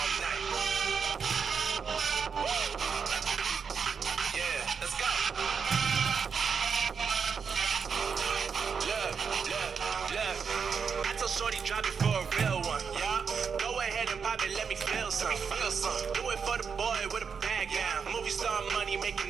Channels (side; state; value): left; quieter; 6.1 dB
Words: night. Woo. Yeah, let's go. Look. I told Shorty drop it for a real one. Yeah. Go ahead and pop it, let me feel some. Do it for the boy with a bag down. Movie star money